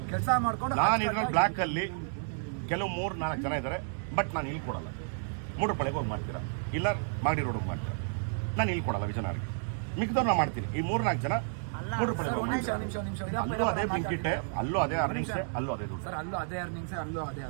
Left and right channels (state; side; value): silent; left; digital silence